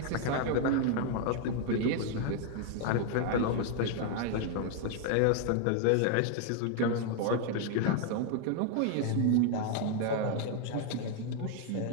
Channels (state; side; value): different; both; correlation 0.00